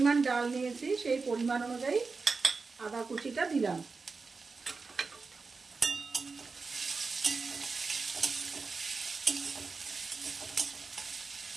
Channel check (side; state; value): left; quieter; 4.4 dB